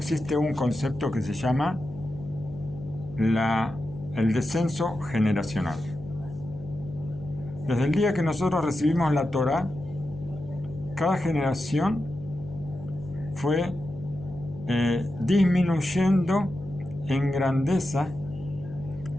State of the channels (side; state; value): left; noise; hum, 15 dB below the sound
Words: un concepto que se llama el descenso generacional. Desde el día que nosotros recibimos la Torá, cada generación fue disminuyendo en grandeza